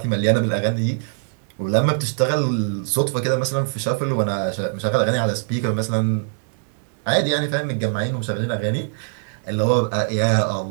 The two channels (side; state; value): left; silent; digital silence